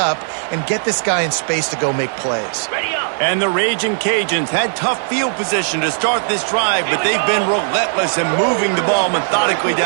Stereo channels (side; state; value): left; silent; 64 dB below the other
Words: and get this guy in space to go make plays. And the Raging Cajuns had tough field position to start this drive, but they've been relentless in moving the ball methodically